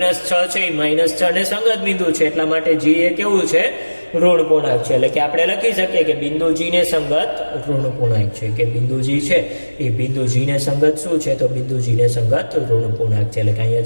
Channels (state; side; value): inverted; both; correlation -1.00